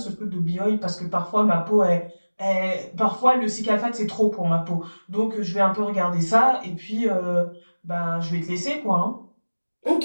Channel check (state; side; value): inverted; both; correlation -1.00